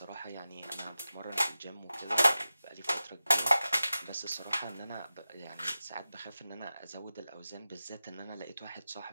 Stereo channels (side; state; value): both; inverted; correlation -0.94